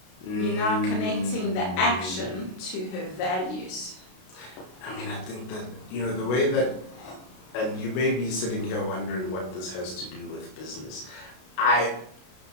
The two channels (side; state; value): right; late; 32 ms